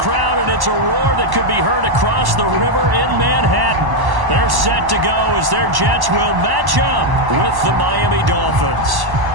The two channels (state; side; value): late; left; 1.1 ms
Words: and it's a roar that could be heard across the river in Manhattan. They're set to go as their Jets will match up with the Miami Dolphins.